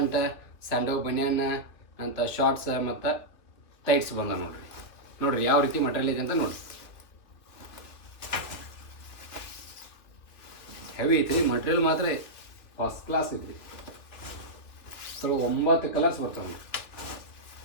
ಸ್ಯಾಂಡೋ ಬನಿಯನ್ ಅಂತ ಶಾರ್ಟ್ಸ್ ಮತ್ತು ಟೈಟ್ಸ್ ಬಂದ ನೋಡ್ರಿ ಯಾವ ರೀತಿ ಮಟೀರಿಯಲ್ ಐತೆ ಅಂತ ನೋಡ್ರಿ. ಹೆವಿ ಐತ್ರಿ ಮಟೀರಿಯಲ್, ಮಾತ್ರ ಫಸ್ಟ್ ಕ್ಲಾಸ್ ಐತ್ರಿ. ಸ್ವಲ್ಪ 9 ಕಲರ್ಸ್ ಬರ್ತಾವೆ ನೋಡ್ರಿ.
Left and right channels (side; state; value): right; late; 2.8 ms